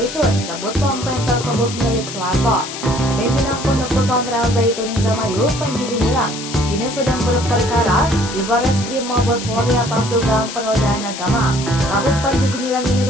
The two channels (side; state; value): left; noise; hiss, 9 dB below the sound